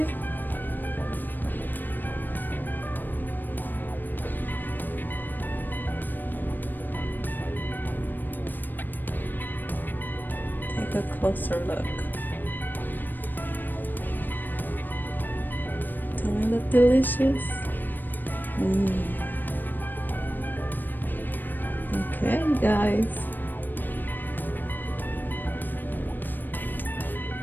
Take a closer look. Don't it look delicious? Okay, guys.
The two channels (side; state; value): right; late; 0.092 ms